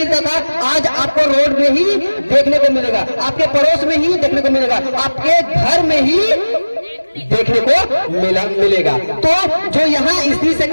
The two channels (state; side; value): inverted; both; correlation -1.00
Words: था, आज आपको रोड में ही देखने को मिलेगा, आपके पड़ोस में ही देखने को मिलेगा, आपके घर में ही देखने को मिलेगा। तो जो यहाँ स्त्री से